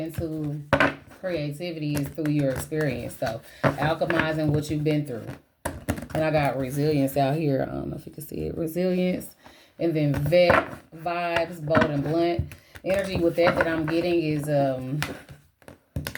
creativity is through your experience. So alchemizing what you've been through. And I got resilience out here. I don't know if you can see it. Resilience. And then vet, vibes, bold and blunt. Energy with that I'm getting is the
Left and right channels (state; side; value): identical; both; correlation 1.00